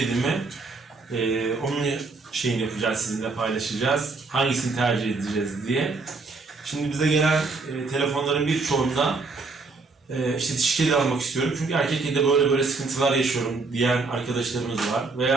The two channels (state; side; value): quieter; left; 3.9 dB